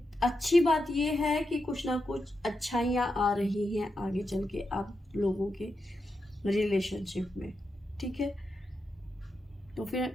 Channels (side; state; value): both; normal; correlation 0.87